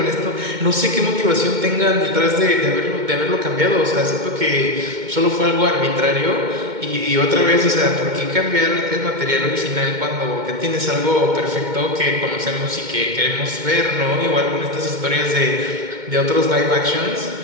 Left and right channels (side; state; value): left; late; 2.1 ms